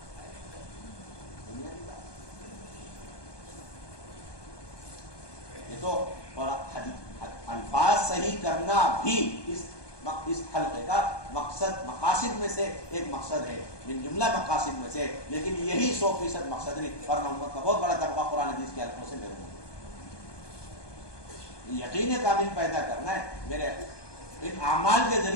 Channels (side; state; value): right; late; 1.2 ms